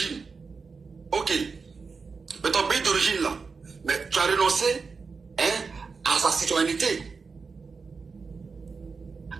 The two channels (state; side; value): quieter; left; 4.8 dB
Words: Ok. Mais ton pays d'origine là, mais tu as renoncé à sa citoyenneté.